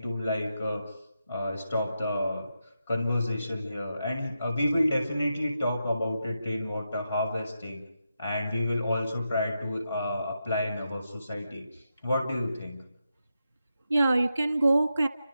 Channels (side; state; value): both; inverted; correlation -0.87